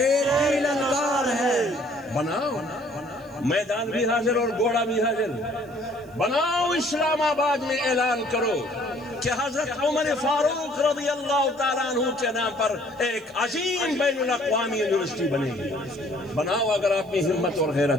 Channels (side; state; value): right; noise; hiss, 29 dB below the sound